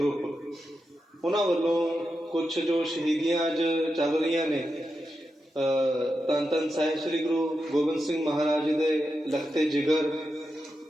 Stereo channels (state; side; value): normal; both; correlation 0.88